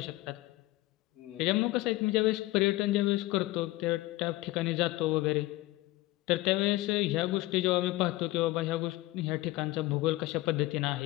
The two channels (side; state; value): right; quieter; 18.7 dB